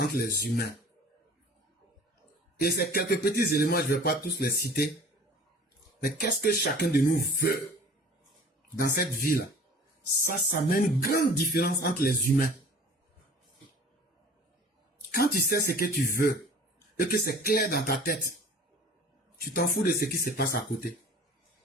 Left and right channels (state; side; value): normal; both; correlation 0.46